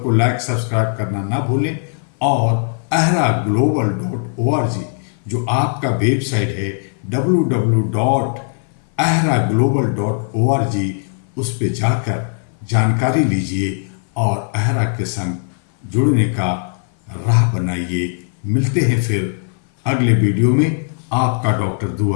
लाइक सब्सक्राइब करना ना भूलें और ahraglobal.org जो आपका वेबसाइट है www.ahraglobal.org, उस पे जाकर जानकारी लीजिए और अहरा के संग जुड़ने का राह बनाइए। मिलते हैं फिर अगले वीडियो में। आपका डॉक्टर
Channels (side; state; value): right; silent; 58 dB below the other